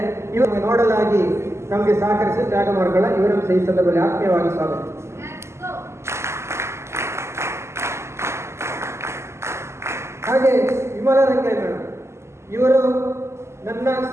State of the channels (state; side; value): late; left; 0.13 ms